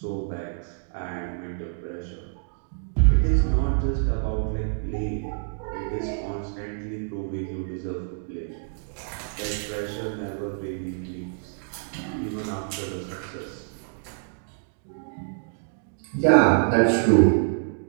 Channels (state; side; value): silent; left; digital silence